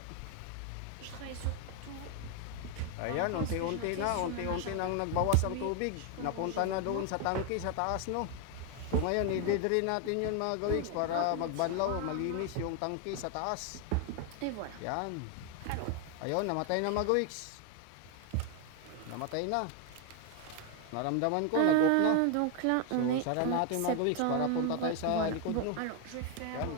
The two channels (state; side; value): different; both; correlation 0.01